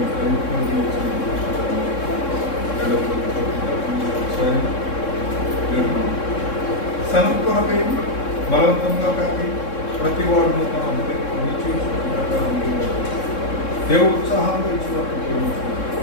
సనత్ కొరకై బలవంతంగా కాకి ప్రతి వాడును తన హృదయంలో నిశ్చయించుకున్న ప్రకారం దేవుడు ఉత్సాహంగా ఇచ్చినట్టు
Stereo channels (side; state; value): right; late; 3.7 ms